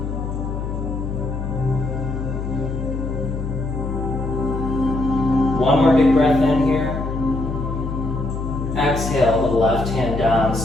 One more big breath in here. Exhale the left hand down,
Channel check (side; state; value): left; noise; hum, 4 dB below the sound